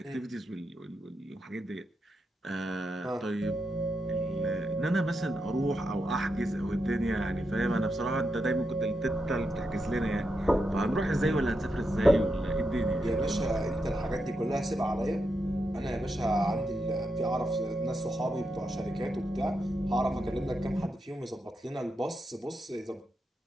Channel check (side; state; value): both; normal; correlation 0.85